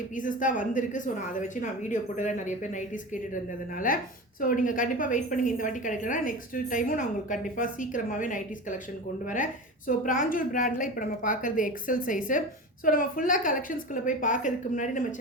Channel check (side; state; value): both; normal; correlation 0.29